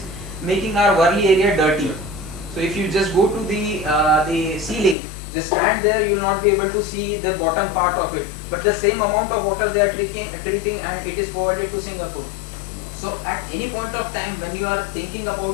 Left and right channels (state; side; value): drops out; right; at 5.0 s